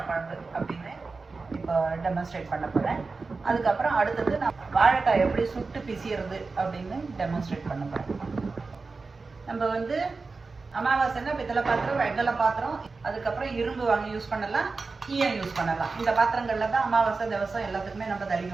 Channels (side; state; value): left; quieter; 4.1 dB